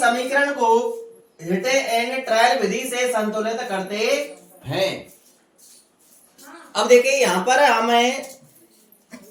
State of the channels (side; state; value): both; identical; correlation 1.00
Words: समीकरण को हिट एंड ट्रायल विधि से संतुलित करते हैं। अब देखिए यहाँ पर हमें